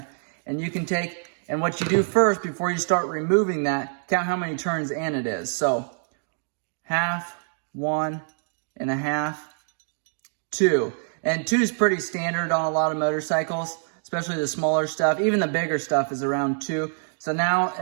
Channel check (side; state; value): left; silent; 61 dB below the other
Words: And you can take, and what you do first before you start removing that, count how many turns in it is. So, half, 1.5, 2. And 2 is pretty standard on a lot of motorcycles, especially the smaller stuff. Even the bigger stuff is around 2. So now,